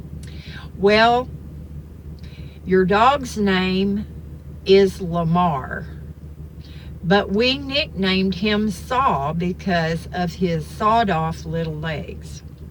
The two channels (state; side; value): identical; both; correlation 1.00